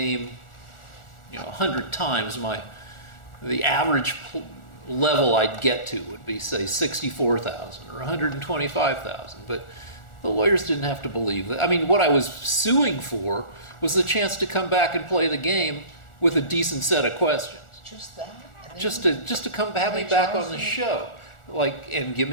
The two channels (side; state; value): right; late; 1.4 ms